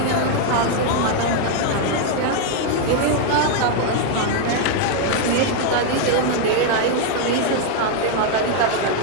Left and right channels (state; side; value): different; both; correlation 0.00